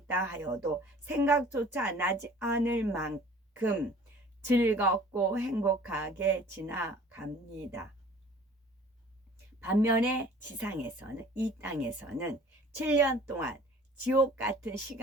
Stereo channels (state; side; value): normal; both; correlation 0.49